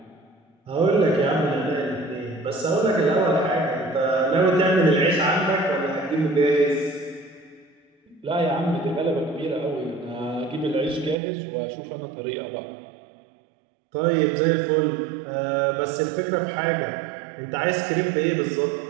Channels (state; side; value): drops out; left; at 11.2 s